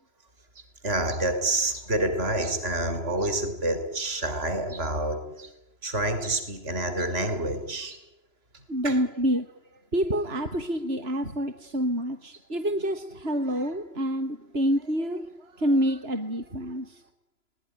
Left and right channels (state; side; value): late; left; 3.0 ms